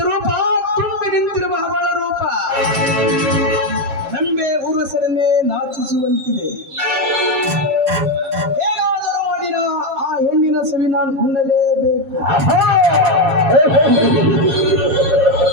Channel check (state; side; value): late; left; 7.3 ms